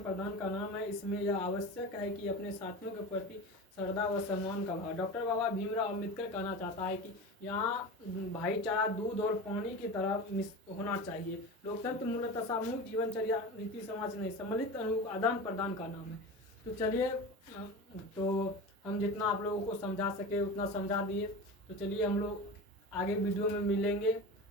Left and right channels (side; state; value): both; normal; correlation 0.29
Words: का नाम है। इसमें यह आवश्यक है कि अपने साथियों के प्रति श्रद्धा व सम्मान का भाव। डॉक्टर बाबा भीमराव अम्बेडकर कहना चाहता है कि यहाँ भाईचारा दूध और पानी की तरह होना चाहिए। लोकतंत्र मूलतः सामूहिक जीवनचर्या रीति समाज नहीं, सम्मिलित अनुभव आदान प्रदान का नाम है। तो चलिए, तो हम जितना आप लोगों को समझा सके उतना समझा दिए। तो चलिए हम लोग आगे वीडियो में मिलेंगे।